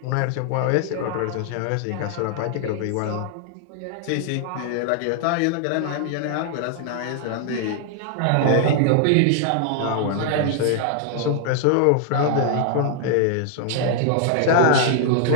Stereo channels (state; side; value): different; both; correlation 0.00